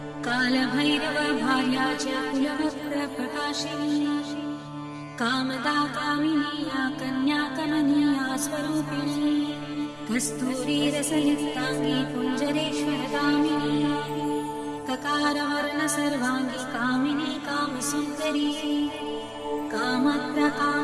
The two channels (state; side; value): identical; both; correlation 1.00